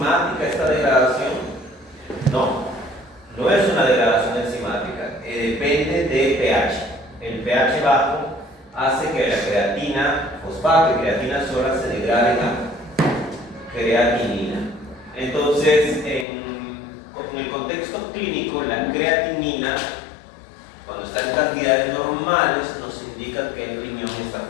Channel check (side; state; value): right; drops out; at 16.2 s